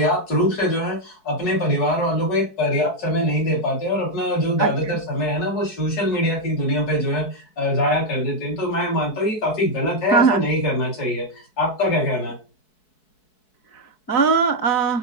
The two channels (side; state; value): right; late; 4.6 ms